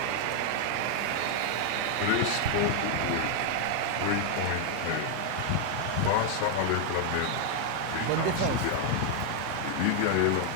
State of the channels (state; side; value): different; both; correlation 0.00